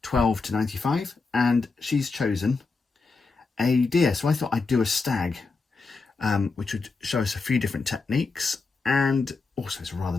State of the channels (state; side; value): quieter; right; 4.2 dB